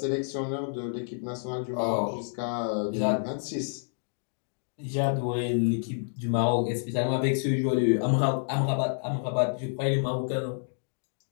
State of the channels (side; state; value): right; silent; digital silence